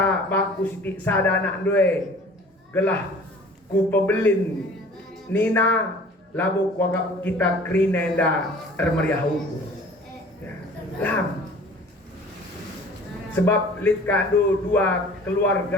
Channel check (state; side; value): normal; both; correlation 0.47